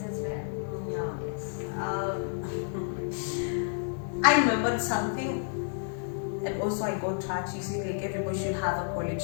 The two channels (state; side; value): silent; right; 57 dB below the other